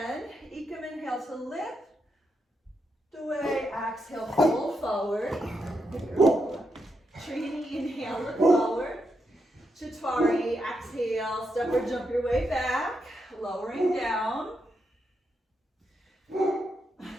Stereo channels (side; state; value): both; normal; correlation 0.83